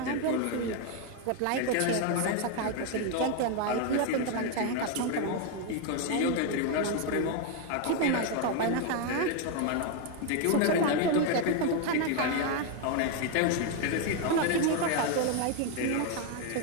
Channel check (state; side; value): different; both; correlation 0.01